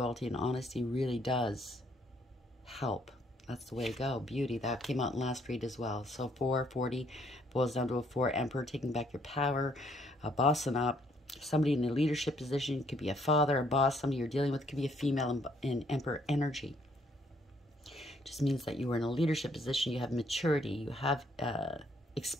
and honesty really does help. That's the way to go. Beauty. That came out in last read as well. So 440 boils down to a 4. Emperor, taking back your power. Bossing up. Somebody in a leadership position. Could be a father, a boss. Somebody you're dealing with. Could be a female in Emperor energy. Just means that you are in a leadership position. You have maturity. You have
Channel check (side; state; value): both; normal; correlation 0.67